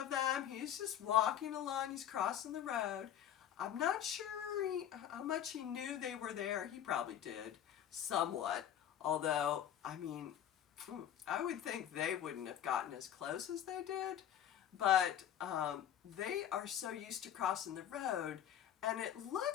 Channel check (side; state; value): right; quieter; 10.4 dB